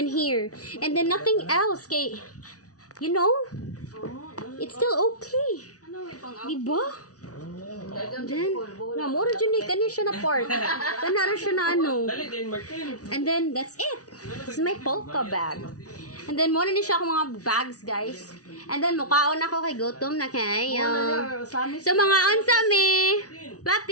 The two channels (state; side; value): late; right; 0.67 ms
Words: here. And then nothing else. Kay, you know, it's still okay. Diba? Then, na, mura dyan eh. Kanina siya na part. Kanara siya na ano. Dali din, Martin. And then, that's it. This is my polka bag. And then, muna din siya akong mga bags, guys. And then, mukhaon ako kay Gutom na kayo. So, mga ansami.